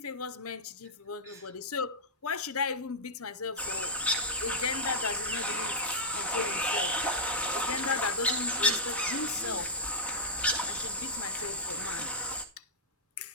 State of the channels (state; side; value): normal; both; correlation -0.10